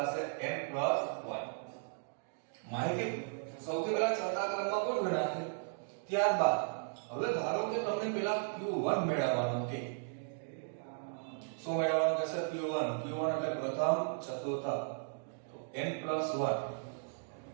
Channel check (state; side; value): silent; left; digital silence